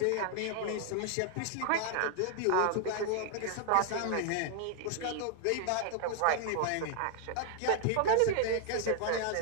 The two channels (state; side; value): different; both; correlation 0.00